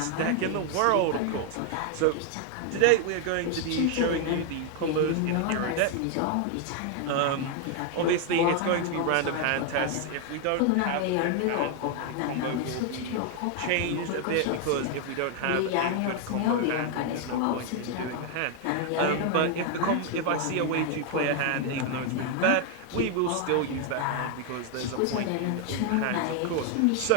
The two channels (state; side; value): different; both; correlation 0.00